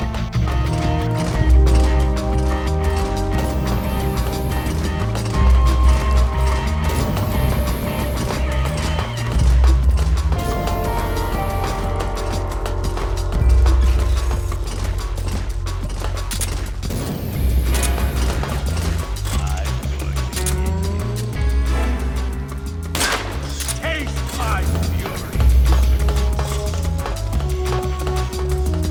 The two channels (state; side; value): identical; both; correlation 1.00